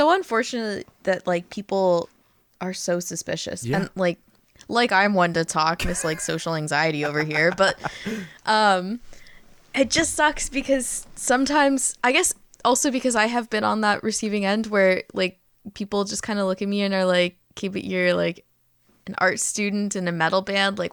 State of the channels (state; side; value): identical; both; correlation 1.00